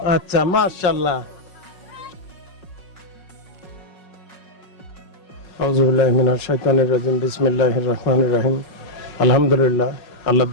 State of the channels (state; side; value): late; right; 5.5 ms